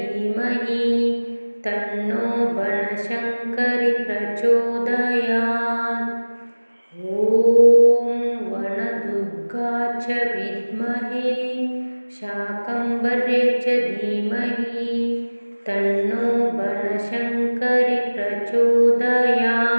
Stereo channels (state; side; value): inverted; both; correlation -1.00